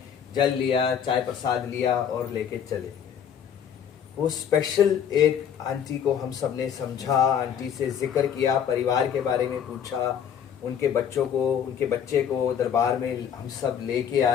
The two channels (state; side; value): quieter; right; 8.4 dB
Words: जल लिया, चाय प्रसाद लिया और लेके चले गए। वो स्पेशल एक आंटी को हम सब ने समझा, आंटी से जिक्र किया, परिवार के बारे में पूछा, उनके बच्चों को, उनके बच्चे को दरबार में हम सब लेके